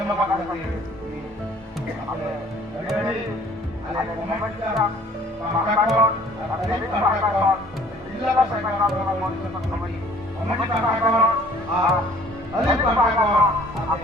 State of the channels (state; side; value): normal; both; correlation 0.54